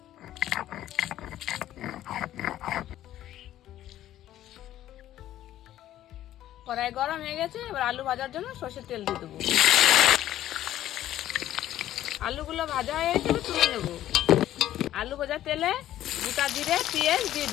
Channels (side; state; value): right; quieter; 12.9 dB